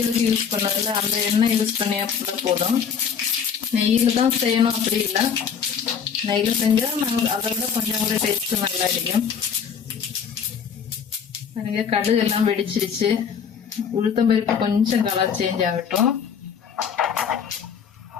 யூஸ் பண்ணதில்ல அந்த எண்ணெய் யூஸ் பண்ணி கூட போதும். நெய்யில தான் செய்யணும் அப்படி இல்லை. நெய்யில செஞ்சா அதை விட கொஞ்சம் கூட டேஸ்ட் நல்லா இருக்கும். கடுகு எல்லாம் வெடிச்சிருச்சு. உளுத்தம் பருப்பு கொஞ்சம் கலர் சேஞ்ச் ஆகட்டும்.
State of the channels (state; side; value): quieter; right; 7.1 dB